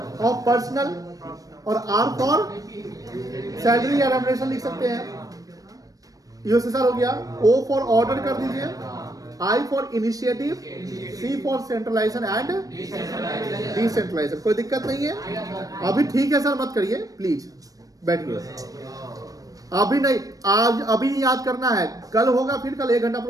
personal, और R फॉर सैलरी या रेम्युनरेशन लिख सकते हैं। USSR हो गया। O फॉर ऑर्डर कर दीजिए, I for initiative, C for centralization and decentralization. कोई दिक्कत नहीं है? अभी ठीक है सर, मत करिए प्लीज, बैठिए। अभी नहीं, आज अभी याद करना है। कल होगा, फिर कल 1 घंटा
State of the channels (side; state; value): left; late; 0.17 ms